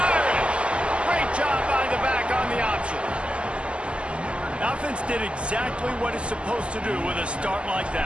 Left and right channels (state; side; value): late; left; 0.054 ms